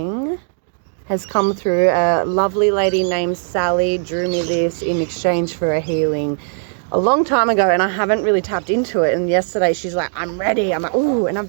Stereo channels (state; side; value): silent; left; 60 dB below the other